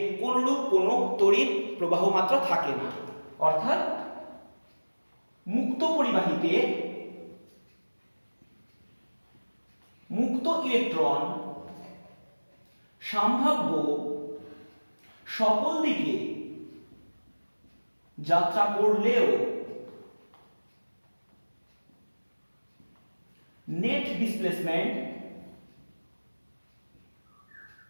কোনরূপ কোনো তড়িৎ প্রবাহ মাত্রা থাকে না। অর্থাৎ মুক্ত পরিবাহীতে মুক্ত ইলেকট্রন সম্ভাব্য সকল দিকে যাত্রা করলেও নেট ডিসপ্লেসমেন্ট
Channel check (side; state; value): both; inverted; correlation -1.00